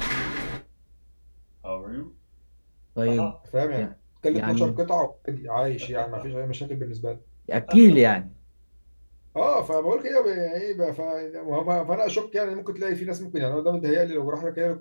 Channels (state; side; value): inverted; both; correlation -1.00